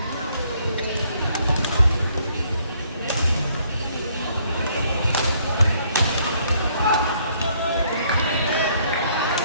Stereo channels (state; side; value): inverted; both; correlation -0.66